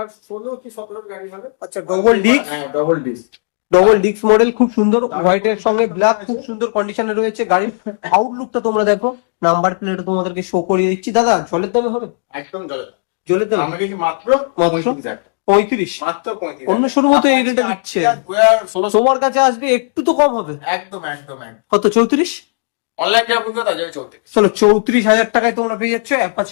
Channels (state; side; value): silent; right; 69 dB below the other